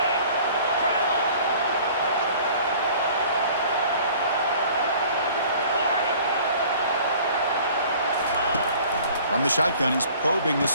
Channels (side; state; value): both; inverted; correlation -0.50